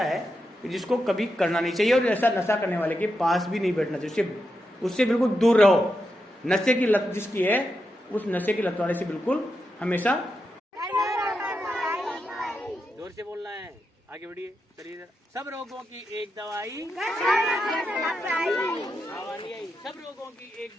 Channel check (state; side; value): normal; both; correlation 0.86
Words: है कि जिसको कभी करना नहीं चाहिए, और ऐसा नशा करने वाले के पास भी नहीं बैठना चाहिए, उससे बिल्कुल दूर रहो। नशे की लत जिसकी है, उस नशे की लत वाले से बिल्कुल हमेशा जोर से बोलना है। आगे बढ़िए, चलिए। सब रोगों की एक दवाई, आवाज नहीं आई। सब रोगों की एक